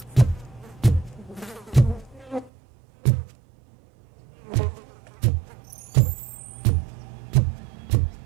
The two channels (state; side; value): drops out; left; at 2.5 s